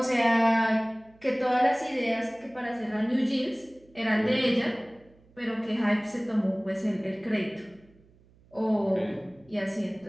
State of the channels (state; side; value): noise; right; hum, 29 dB below the sound